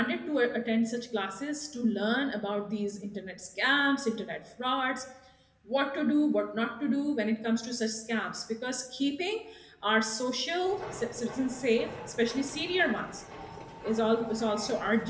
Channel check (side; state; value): both; identical; correlation 1.00